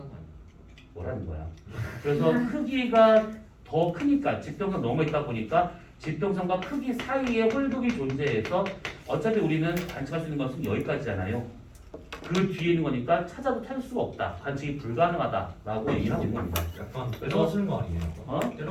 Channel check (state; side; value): identical; both; correlation 1.00